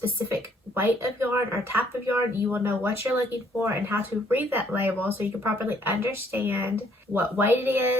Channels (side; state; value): both; normal; correlation 0.65